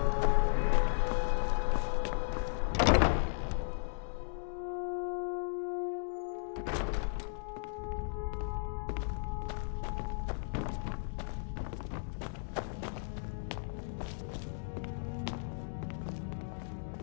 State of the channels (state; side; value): silent; right; digital silence